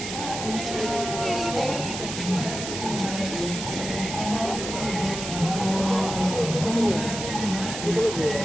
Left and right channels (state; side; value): noise; right; hiss, 6 dB below the sound